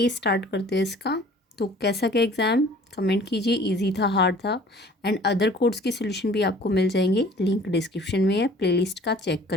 स्टार्ट करते हैं इसका। तो कैसा क्या एग्ज़ाम कमेंट कीजिए, इजी था हार्ड था। एंड अदर कोड्स के सोल्यूशन भी आपको मिल जाएंगे, लिंक डिस्क्रिप्शन में है, प्लेलिस्ट का चेक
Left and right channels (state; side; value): normal; both; correlation 0.50